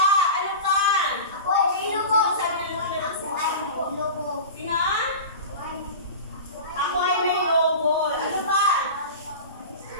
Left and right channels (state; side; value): inverted; both; correlation -0.31